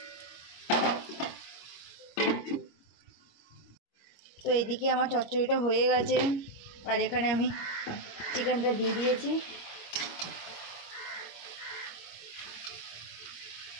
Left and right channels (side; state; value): right; late; 25 ms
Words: তো এইদিকে আমার চচ্চড়িটা হয়ে গেছে, আর এখানে আমি চিকেনটা দিয়ে দিয়েছি।